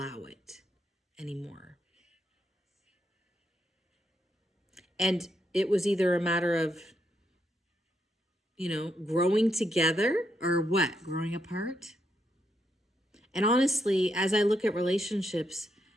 it anymore. And it was either a matter of, growing together or what? Growing apart? And honestly, as I look at relationships,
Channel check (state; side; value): normal; both; correlation 0.79